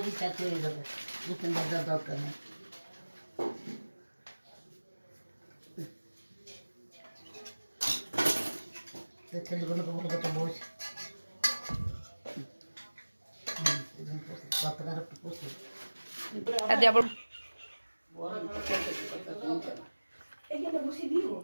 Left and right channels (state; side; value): inverted; both; correlation -1.00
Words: চারটে হয়ে যাবে, দুটো ভাজার দরকার নেই। ছেলেগুলোকে বলবো তো বস কতকার একটু বসে